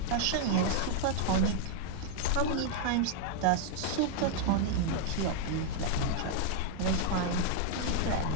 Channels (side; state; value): both; different; correlation 0.00